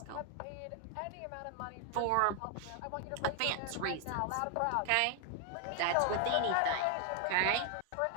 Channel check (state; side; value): different; both; correlation 0.00